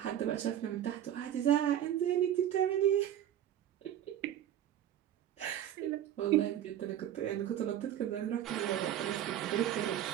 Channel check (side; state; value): left; quieter; 11.0 dB